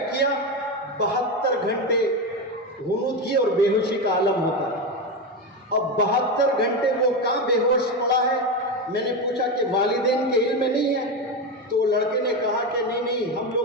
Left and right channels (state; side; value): normal; both; correlation 0.15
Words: کیا 72 گھنٹے غنودگی اور بے ہوشی کا عالم ہوتا ہے۔ اب 72 گھنٹے وہ کہاں بے ہوش پڑا ہے؟ میں نے پوچھا کہ والدین کے علم میں نہیں ہے؟ تو لڑکے نے کہا کہ نہیں ہم